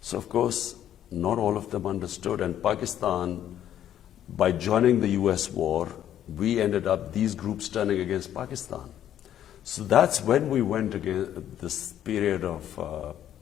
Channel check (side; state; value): right; quieter; 10.9 dB